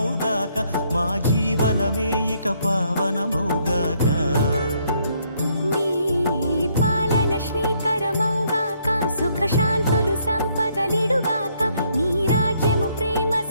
మా జీవనమే ఇక పావనమౌగాక. నీ పాలన శ్రీకరమౌగాక. సుఖ శాంతులు సంపదలిడుగాక. నీ రాజ్యము ప్రేమ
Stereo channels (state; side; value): inverted; both; correlation -0.70